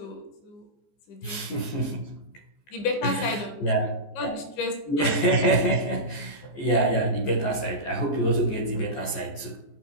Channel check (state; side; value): late; right; 14 ms